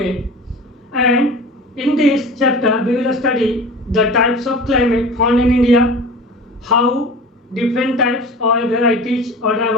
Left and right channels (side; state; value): both; normal; correlation 0.37